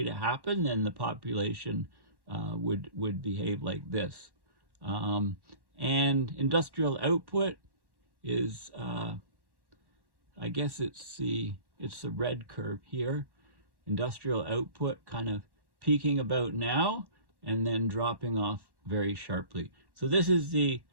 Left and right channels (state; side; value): late; left; 1.1 ms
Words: to happen, then the population would behave like this. And industrial output is I guess it's the red curve here. Industrial output kind of peaking about now and then dropping off very sharply. So this is the